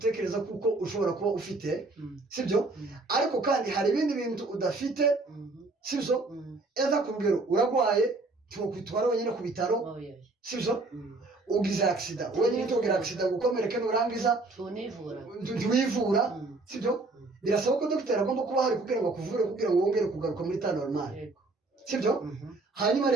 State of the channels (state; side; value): quieter; left; 3.3 dB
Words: kuko ushobora kuba ufite sibyo ariko kandi hari ibindi bintu udafite sibyo eza ku rugero uragwaye tukwitwara wenyine ku bitaro sibyo ugize accident wenyine tugira accident gukomereka nurangiza tuwivura sibyo birasaba ko dogiteri agomba kuba hari kugira ngo akuvure kugira ngo wongere kugaruka muri ta normal sibyo hanyuma